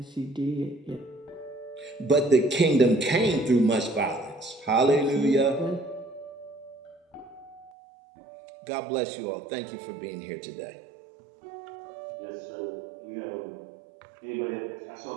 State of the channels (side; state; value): left; drops out; at 7.7 s